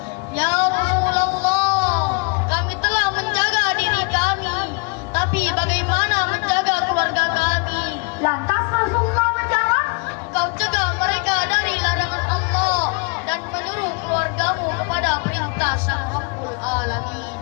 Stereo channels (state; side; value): quieter; right; 33.3 dB